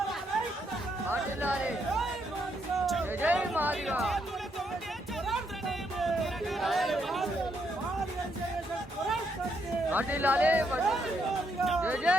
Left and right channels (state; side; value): normal; both; correlation 0.76